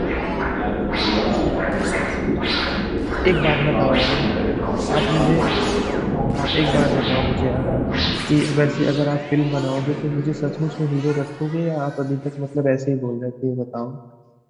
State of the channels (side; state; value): both; identical; correlation 1.00